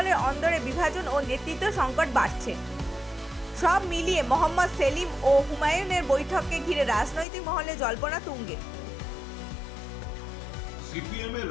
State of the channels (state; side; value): drops out; right; at 7.2 s